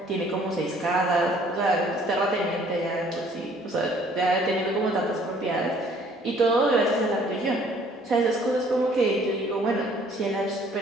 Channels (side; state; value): both; normal; correlation 0.58